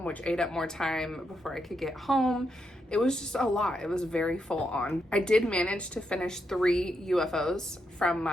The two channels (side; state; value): both; normal; correlation 0.81